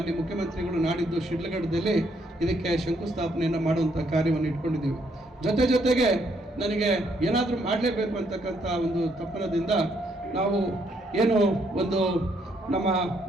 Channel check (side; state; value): both; normal; correlation 0.72